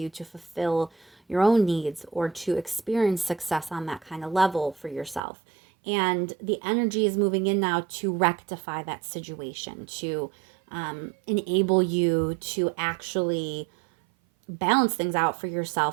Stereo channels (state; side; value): drops out; left; at 5.2 s